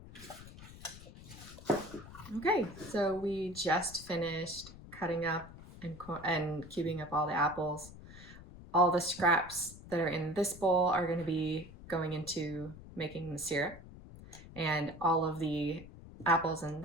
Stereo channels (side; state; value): left; noise; rumble, 16 dB below the sound